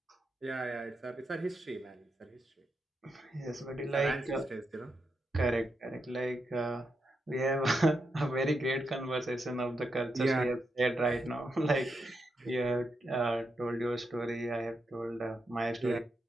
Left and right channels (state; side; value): normal; both; correlation 0.84